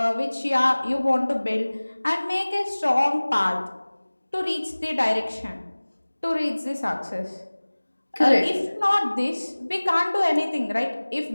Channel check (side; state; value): both; inverted; correlation -1.00